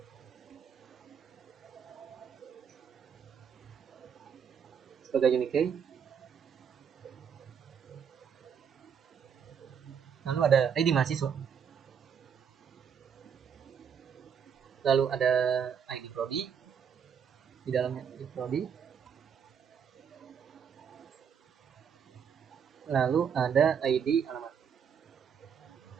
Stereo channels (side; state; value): left; quieter; 7.5 dB